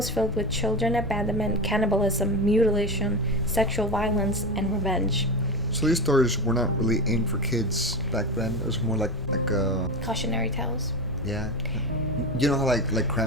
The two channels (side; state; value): left; noise; rumble, 12 dB below the sound